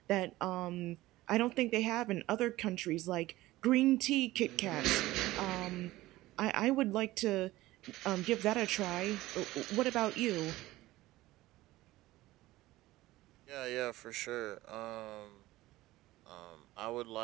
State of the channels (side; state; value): left; quieter; 17.4 dB